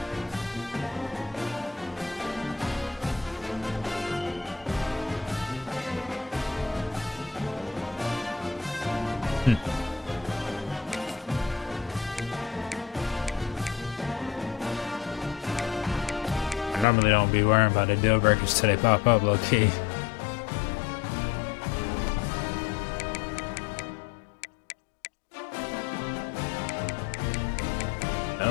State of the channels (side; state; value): right; drops out; at 16.9 s